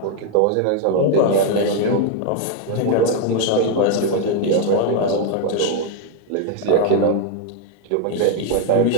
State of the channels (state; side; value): different; both; correlation 0.01